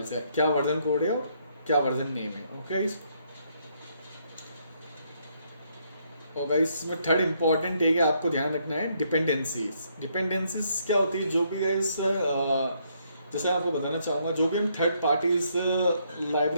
से क्या वर्जन कोड है और क्या वर्जन नेम है। ओके गाइस, और गाइस इसमें थर्ड इंपॉर्टेंट है कि आपको ध्यान रखना है डिपेंडेंसीज। डिपेंडेंसीज क्या होती है, जो भी गाइस जैसे आपको बताना चाहूँगा, जो भी हम थर्ड पार्टीज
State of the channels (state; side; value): inverted; both; correlation -0.72